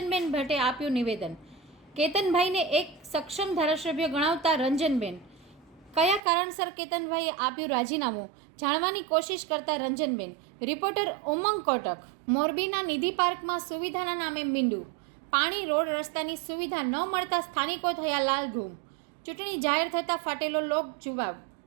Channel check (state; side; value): drops out; left; at 6.2 s